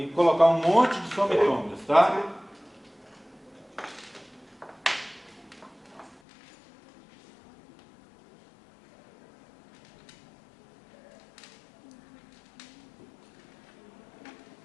colocar um monte de somitômeros, tá?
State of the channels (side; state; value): right; drops out; at 6.2 s